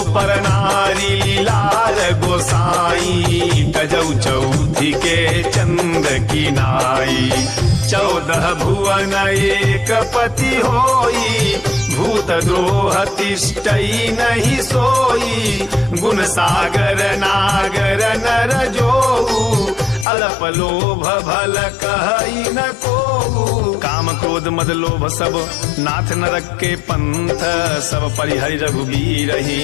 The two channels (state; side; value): drops out; right; at 20.1 s